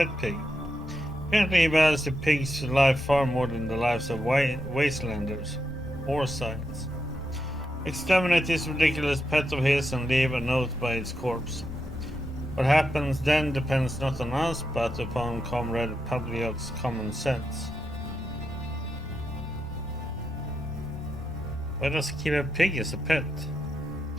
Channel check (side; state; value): both; normal; correlation 0.85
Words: pig. Apparently he values the pig's life far more than the lives of wastelanders or science. Exterminate this ridiculous pet of his and leave a note by its corpse. What happens then depends not on us, but upon Comrade Pavlyuk's common sense. Why does he keep a pig as a pet?